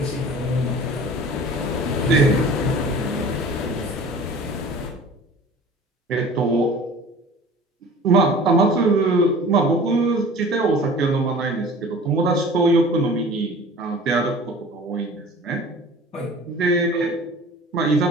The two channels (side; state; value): both; normal; correlation 0.43